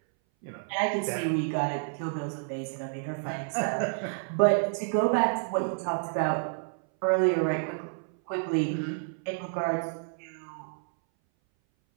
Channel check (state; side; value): silent; left; 58 dB below the other